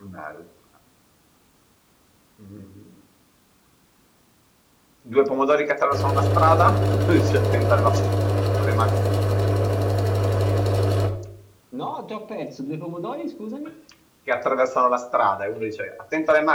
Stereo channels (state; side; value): identical; both; correlation 1.00